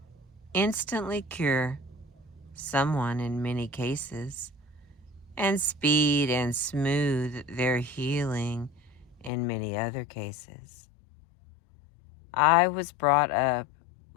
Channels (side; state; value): right; drops out; at 9.3 s